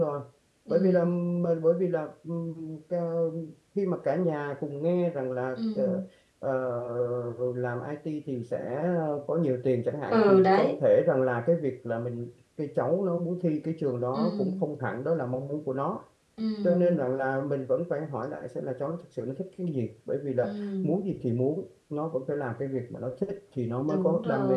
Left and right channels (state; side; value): identical; both; correlation 1.00